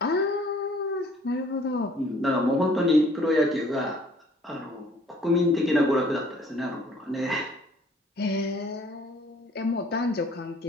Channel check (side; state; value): both; normal; correlation 0.57